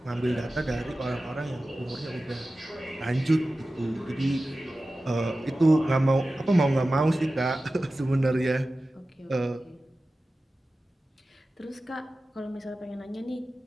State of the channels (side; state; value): both; normal; correlation 0.95